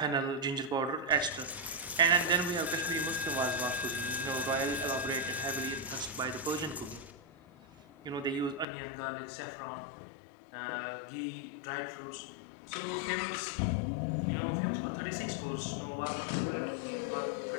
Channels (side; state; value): right; drops out; at 8.7 s